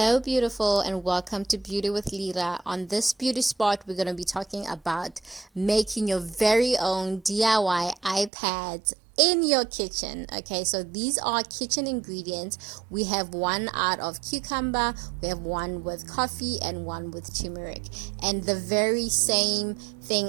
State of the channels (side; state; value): left; drops out; at 8.3 s